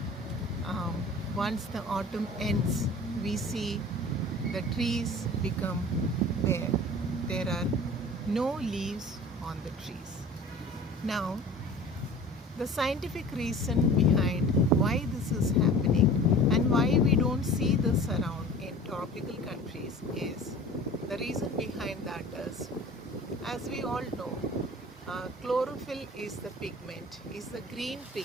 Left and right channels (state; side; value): normal; both; correlation 0.42